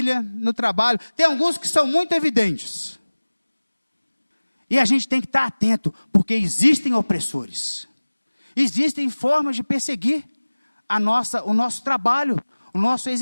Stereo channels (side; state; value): both; inverted; correlation -1.00